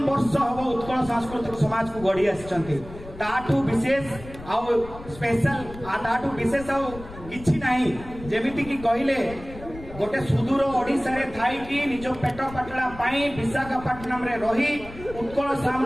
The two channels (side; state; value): left; noise; rumble, 15 dB below the sound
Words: वर्ष हम उत्कल सांस्कृतिक समाज को गढ़ी आसी ताठू विशेष आउ स्पेशल ताठू विशेष आउ किछि नाही जेमिति कि कहले गोटे सुदूर ओडिशा रे थाई कि निज पेट पाटला पाई विशाखापट्टनम रे रही उत्कल